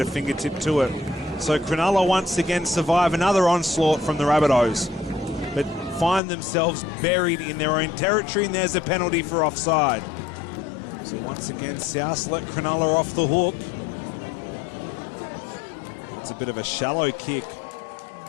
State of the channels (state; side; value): drops out; right; at 6.2 s